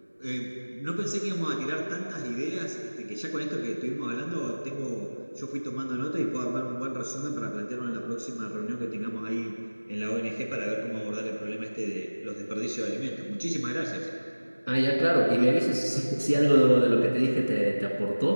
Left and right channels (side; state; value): both; inverted; correlation -1.00